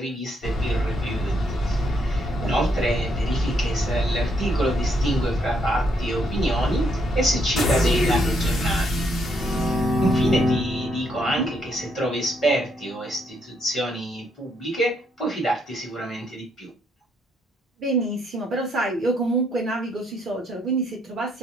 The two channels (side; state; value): both; normal; correlation 0.74